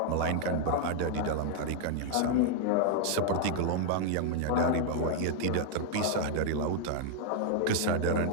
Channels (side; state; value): both; different; correlation 0.00